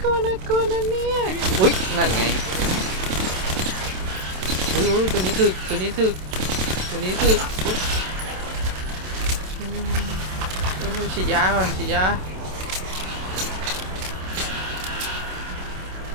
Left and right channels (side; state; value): left; late; 27 ms